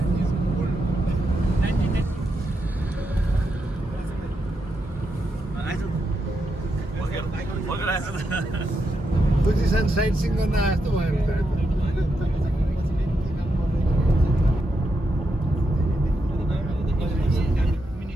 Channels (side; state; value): both; normal; correlation 0.84